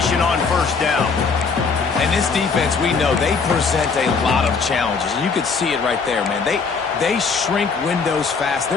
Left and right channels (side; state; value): right; quieter; 5.0 dB